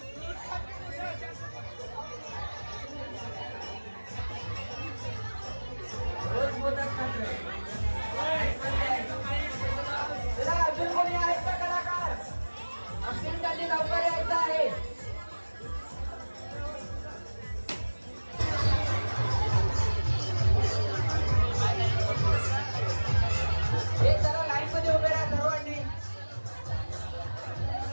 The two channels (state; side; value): inverted; both; correlation -1.00